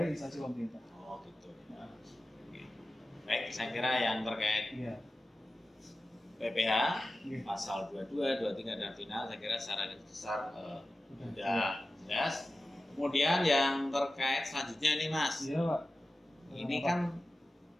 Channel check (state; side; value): normal; both; correlation 0.95